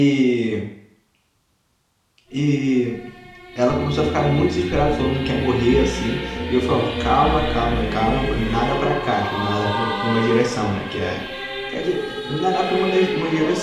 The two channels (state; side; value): identical; both; correlation 1.00